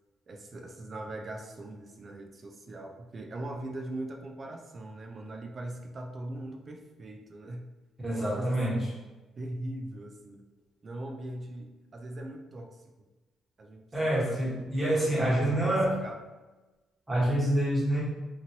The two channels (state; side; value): normal; both; correlation 0.83